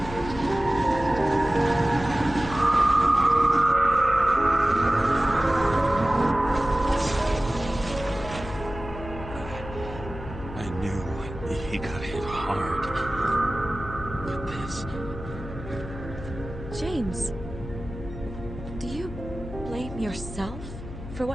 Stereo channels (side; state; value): left; noise; hum, 11 dB below the sound